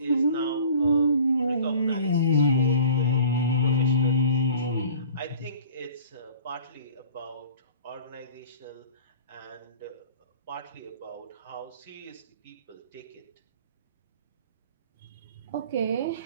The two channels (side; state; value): both; inverted; correlation -0.47